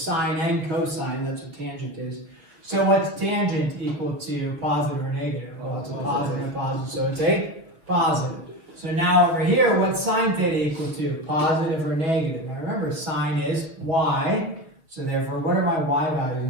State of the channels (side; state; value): left; late; 6.7 ms